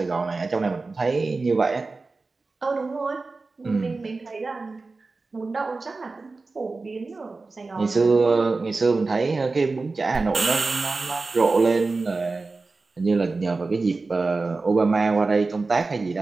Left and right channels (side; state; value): left; quieter; 3.8 dB